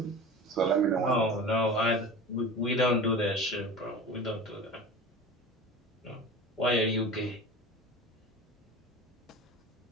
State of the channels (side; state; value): both; normal; correlation 0.34